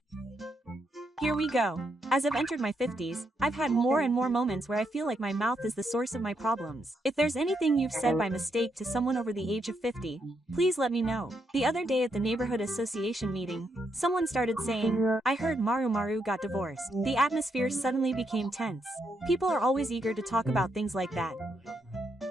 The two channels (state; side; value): normal; both; correlation 0.79